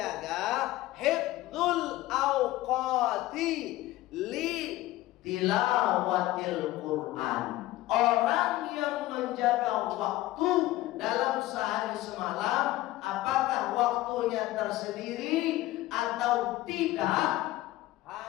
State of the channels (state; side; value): quieter; right; 16.8 dB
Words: hifdzul awqati li tilawatil Quran. Orang yang menjaga waktu dalam sehari semalam, apakah waktunya tersendiri atau tidak,